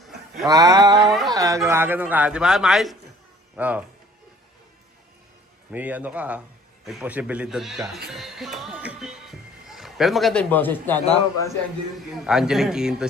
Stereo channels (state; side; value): normal; both; correlation 0.53